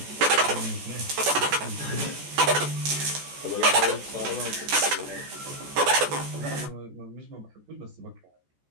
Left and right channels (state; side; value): late; left; 14 ms